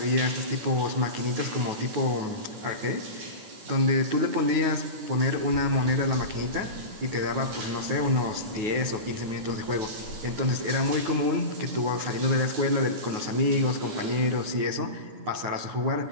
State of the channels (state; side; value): late; left; 9.4 ms